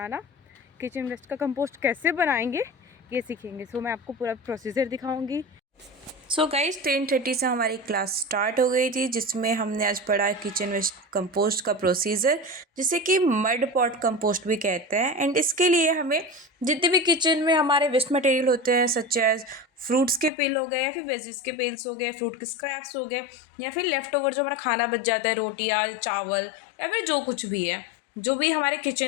किचन वेस्ट का कंपोस्ट कैसे बनाएंगे ये सीखेंगे। मैं आपको पूरा प्रोसीजर दिखाऊंगी। गाइज 10:30 से हमारी क्लास स्टार्ट हो गई थी, जिसमें हमने आज पढ़ा किचन वेस्ट कंपोस्ट का प्रोसीजर, जिसे कि मड पॉट कंपोस्ट भी कहते हैं। एंड इसके लिए हमें जितने भी किचन में हमारे वेस्ट मटेरियल होते हैं, सच एज फ्रूट्स के पेल हो गए या फिर वेजिस के पेल्स हो गए, फ्रूट के स्क्रैप्स हो गए, या फिर लेफ्ट ओवर जो हमारा खाना बच जाता है, रोटियाँ, चावल या फिर जो कुछ भी है, जो भी हमारे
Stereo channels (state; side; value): drops out; right; at 20.3 s